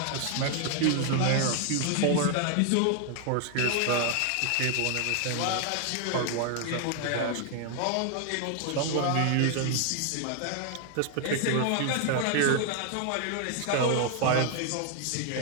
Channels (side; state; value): both; different; correlation 0.00